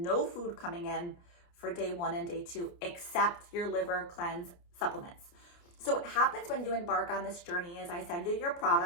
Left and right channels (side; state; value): right; late; 29 ms